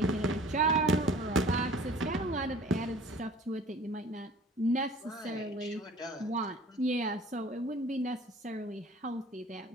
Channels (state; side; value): normal; both; correlation 0.48